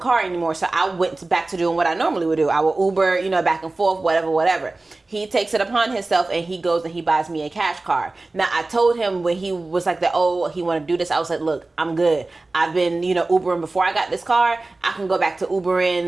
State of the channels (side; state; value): left; quieter; 3.2 dB